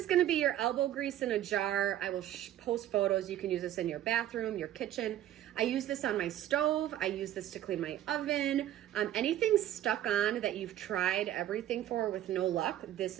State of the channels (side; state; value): left; quieter; 12.5 dB